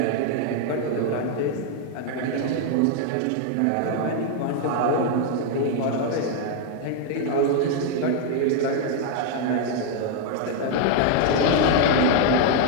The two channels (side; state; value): both; different; correlation 0.00